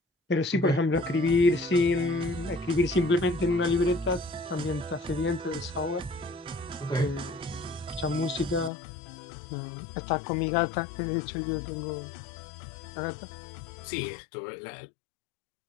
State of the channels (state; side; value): drops out; right; at 8.7 s